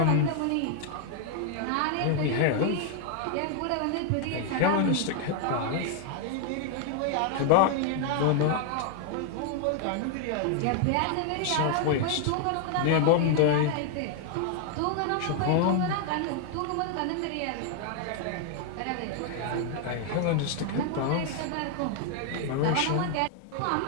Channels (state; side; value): different; both; correlation 0.00